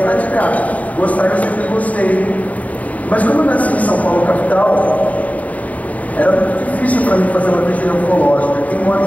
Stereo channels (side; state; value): right; late; 0.071 ms